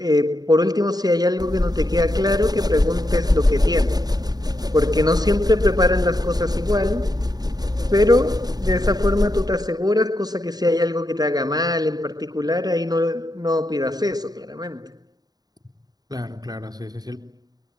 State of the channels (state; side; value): late; left; 0.19 ms